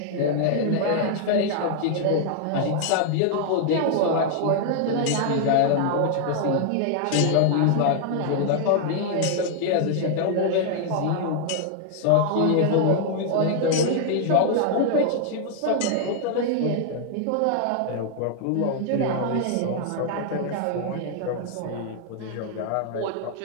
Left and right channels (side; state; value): both; different; correlation -0.01